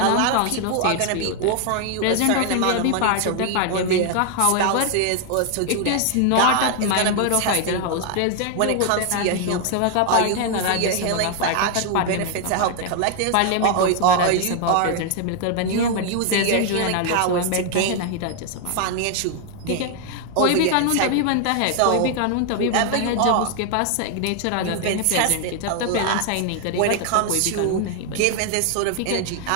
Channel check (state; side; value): different; both; correlation 0.00